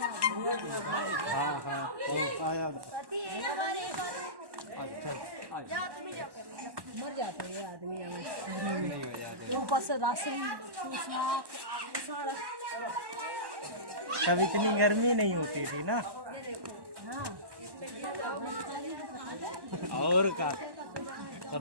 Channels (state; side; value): late; left; 1.1 ms